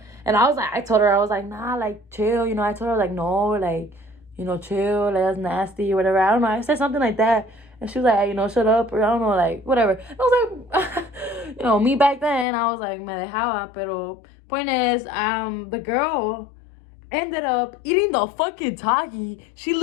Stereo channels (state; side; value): drops out; right; at 12.5 s